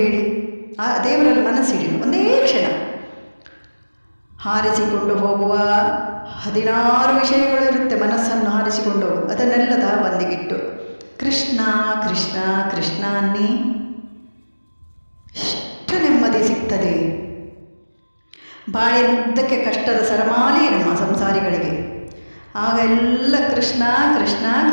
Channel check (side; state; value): both; inverted; correlation -1.00